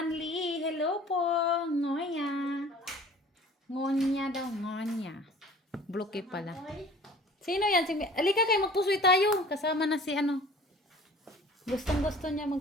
Hello po. Ngoya. Ngonya daw. Ngonya. Bloke pala. Sino yan? Alika kayo, magpusoy tayo. Kasama na si ano. Gustong gusto niya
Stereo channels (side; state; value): both; normal; correlation 0.48